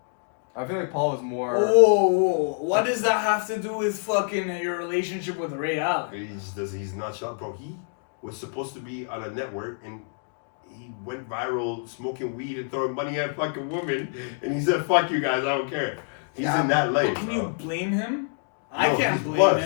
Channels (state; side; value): silent; right; 61 dB below the other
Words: I feel like Paul was more. Oh, what does that have to do with fucking your relationship with Ray Allen? He's not shot, bro. He was supposed to be on a network and he went viral smoking weed and throwing money at fucking women, and he said, "Fuck you guys, I don't care." He's in that life, But can bro. you blame him? I No, can't he's blame